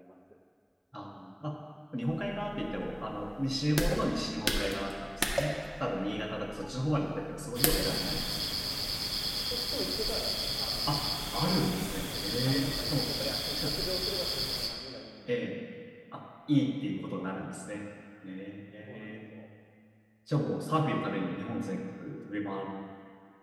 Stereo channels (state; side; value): identical; both; correlation 1.00